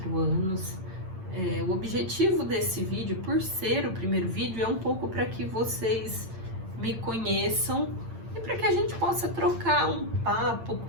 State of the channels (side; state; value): left; late; 8.8 ms